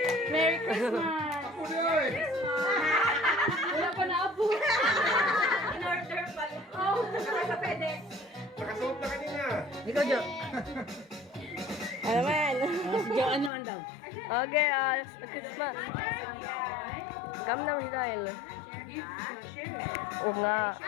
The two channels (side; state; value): right; drops out; at 13.5 s